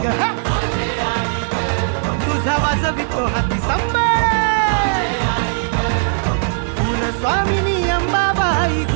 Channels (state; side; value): silent; left; 65 dB below the other